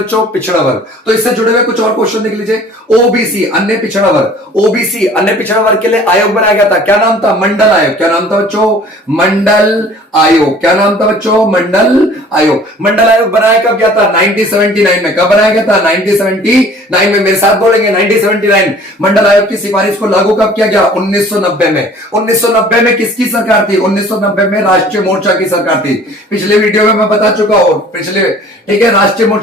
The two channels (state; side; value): normal; both; correlation 0.50